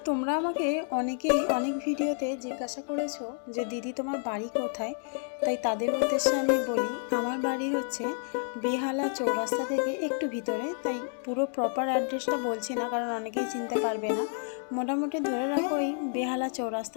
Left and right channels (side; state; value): right; silent; 58 dB below the other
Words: তোমরা আমাকে অনেকেই অনেক ভিডিওতে জিজ্ঞাসা করেছো যে দিদি তোমার বাড়ি কোথায়। তাই তাদের উদ্দেশ্যে আমি বলি, আমার বাড়ি হচ্ছে বেহালা চৌরাস্তা থেকে একটু ভিতরে। তাই পুরো প্রপার অ্যাড্রেসটা বলছি না, কারণ অনেকেই চিনতে পারবে না। মোটামুটি ধরে রাখো ওই বেহালা